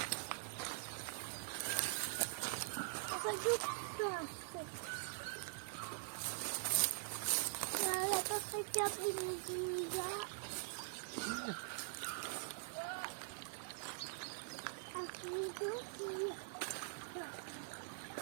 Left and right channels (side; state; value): left; silent; digital silence